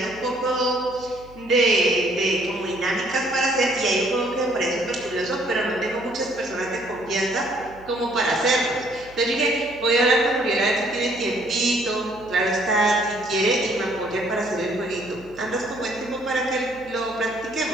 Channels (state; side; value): noise; right; hum, 23 dB below the sound